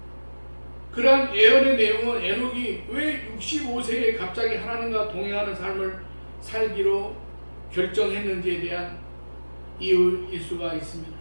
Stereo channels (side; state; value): both; inverted; correlation -1.00